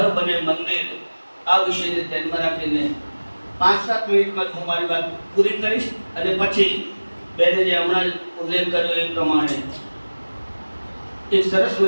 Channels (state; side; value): inverted; both; correlation -1.00